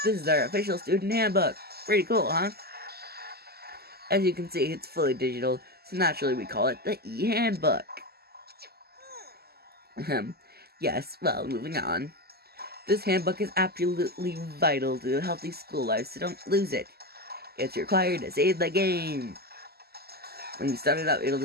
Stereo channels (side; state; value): left; late; 0.46 ms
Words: This is our official student handbook. Pretty cool, huh? As you can see, it's fully digital, so naturally we call it the e-handbook. Yes, well, moving on. This handbook is absolutely vital to a healthy school life, so don't lose it. It's required to save the game. When you start it out, it'll